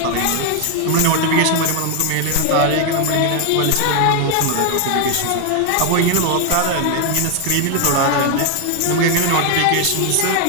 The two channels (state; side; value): different; both; correlation 0.01